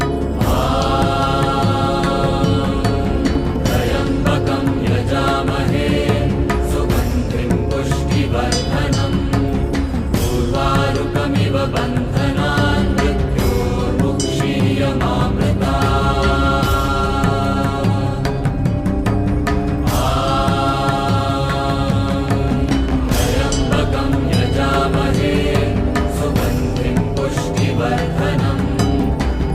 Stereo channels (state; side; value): identical; both; correlation 1.00